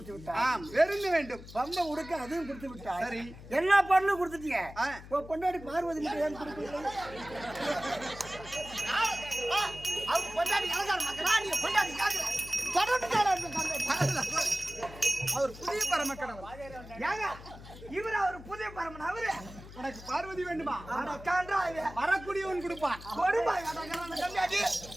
விட்டார். ஆம், வெறுந்து வேண்டும். பம்ப உடுக்க அதையும் கொடுத்து விட்டார். சரி, எல்லா பொருளும் கொடுத்துட்டீங்க. ஆ. இப்போ பொண்டாடி பார்வதி மட்டும் ஏன் கொடுக்கல? அவர் பொண்டாடி அலங்கார மக்களா நீங்க பொண்டாடி கேக்குற அவர் புதிய பரமக்கடவுள். ஏங்க இவர் அவர் புதிய பரமன் அவரு உனக்கு பார்வதி வேண்டுமா? அடக்கான்றா வரக்கூடியவன் கொடுப்பான். கொடுப்பாய் அடக்கான கம்மியாடி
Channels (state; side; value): noise; left; hum, 16 dB below the sound